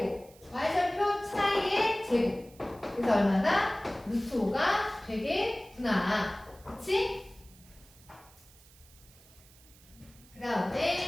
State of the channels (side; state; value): right; noise; hiss, 25 dB below the sound